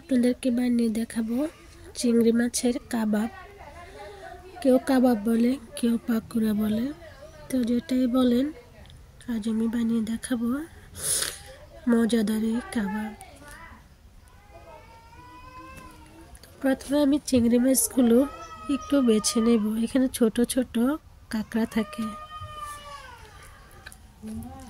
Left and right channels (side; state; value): both; identical; correlation 1.00